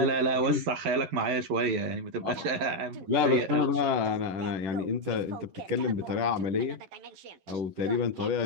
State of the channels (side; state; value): left; late; 11 ms